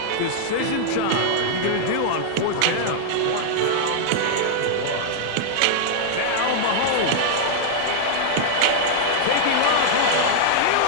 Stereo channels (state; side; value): different; both; correlation -0.01